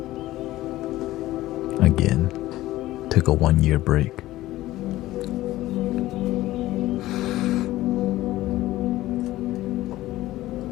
Again, took a 1-year break.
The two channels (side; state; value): right; quieter; 16.2 dB